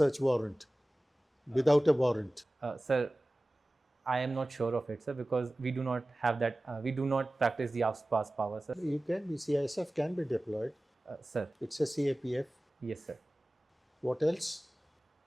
warrant, without a warrant. Sir, I am not sure of it, sir, because we do not have that. We do not practice the AFSPA's power, sir. You can be CISF can be deployed. Sir, It's a CAPF. yes, sir. What else?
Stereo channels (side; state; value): both; normal; correlation 0.97